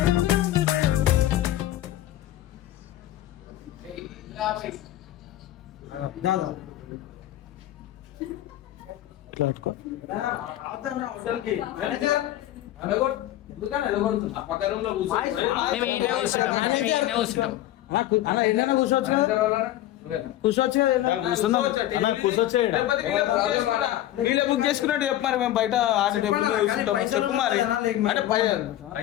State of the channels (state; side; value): quieter; right; 13.9 dB